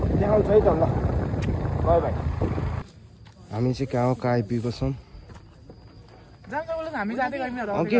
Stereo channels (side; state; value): both; identical; correlation 1.00